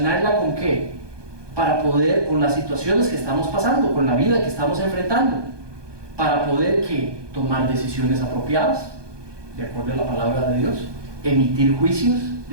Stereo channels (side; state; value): left; late; 1.2 ms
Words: con qué? Para poder, con las situaciones que estamos pasando, con la vida que estamos enfrentando, para poder ¿qué? Tomar decisiones apropiadas, de acuerdo a la palabra de Dios, emitir juicios,